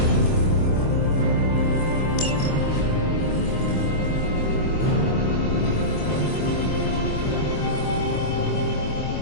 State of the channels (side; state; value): right; late; 24 ms